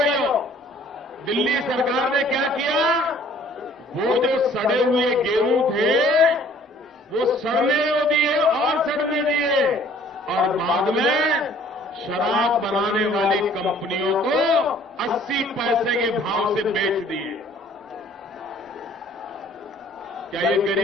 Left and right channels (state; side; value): normal; both; correlation 0.56